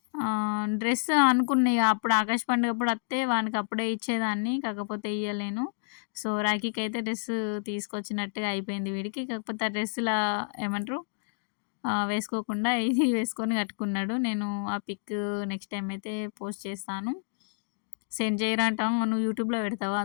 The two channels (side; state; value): right; silent; digital silence